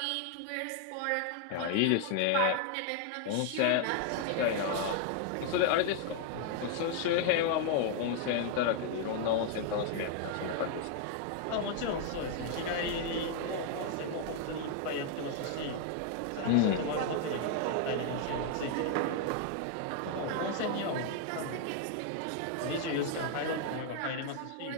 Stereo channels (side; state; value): both; different; correlation 0.00